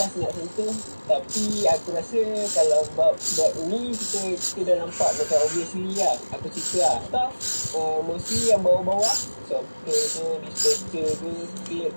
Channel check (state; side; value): inverted; both; correlation -1.00